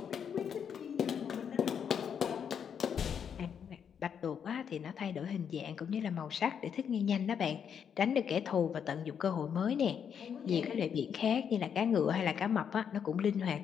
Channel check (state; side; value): quieter; right; 7.7 dB